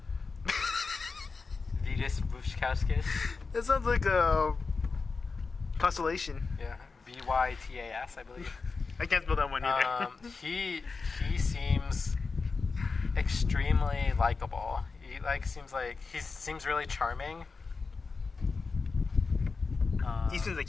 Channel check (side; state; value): right; quieter; 4.4 dB